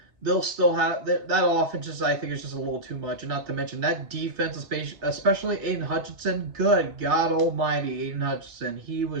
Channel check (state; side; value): late; left; 3.3 ms